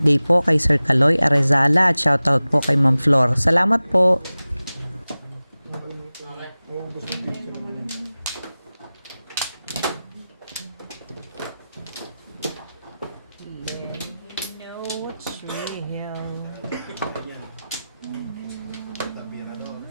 po kay Sir Kaloy Arezala at shoutout po kay Ma'am Flor. Salamat po. Maubos yung picture mo. Tabi na doon.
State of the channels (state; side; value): inverted; both; correlation -0.96